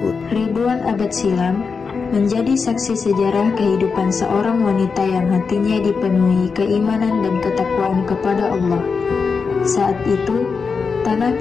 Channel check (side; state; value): right; quieter; 5.2 dB